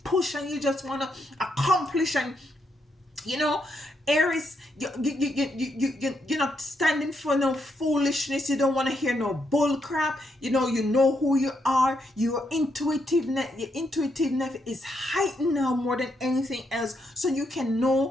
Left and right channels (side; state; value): both; normal; correlation 0.79